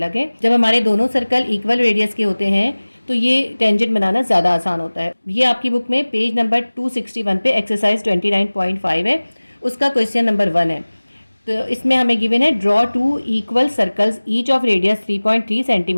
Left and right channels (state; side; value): inverted; both; correlation -1.00